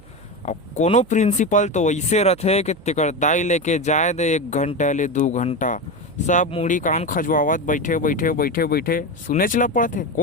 अब कोनो प्रिंसिपल तो ऐसे रथे कि तेकर दाई लेके जाए दे 1 घंटा ले 2 घंटा सब मुड़ी कान खजवावत बैठे बैठे बैठे बैठे सुने चला पड़ते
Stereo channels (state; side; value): noise; right; hum, 24 dB below the sound